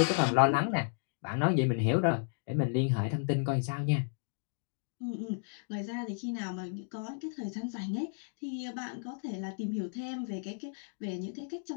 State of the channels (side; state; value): right; silent; digital silence